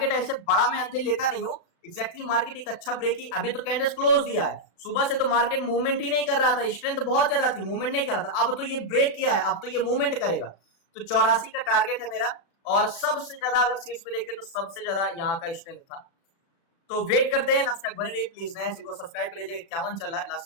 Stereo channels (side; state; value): right; late; 36 ms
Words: ऐसे बड़ा मैं अंदर लेता नहीं हूँ, एग्जैक्टली मार्केट एक अच्छा ब्रेक ही, अभी तो कैंडल्स क्लोज दिया है, सुबह से तो मार्केट मूवमेंट ही नहीं कर रहा था, स्ट्रेंथ बहुत ज्यादा थी, मूवमेंट नहीं कर रहा था, अब तो ये ब्रेक किया है, अब तो ये मूवमेंट करेगा। तो 84 का टारगेट है मेरा, और सबसे ज्यादा अगर सीट्स पे देखें तो सबसे ज्यादा यहाँ का स्ट्रेंथ था तो वेट करते हैं, लास्ट तक बने रहिए प्लीज। नया चैनल को सब्सक्राइब कर लीजिएगा, 51 चल रहा है, लास्ट